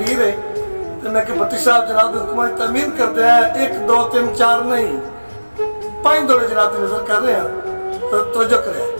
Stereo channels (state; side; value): inverted; both; correlation -1.00